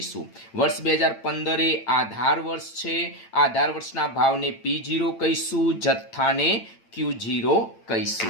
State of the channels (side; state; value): right; late; 8.9 ms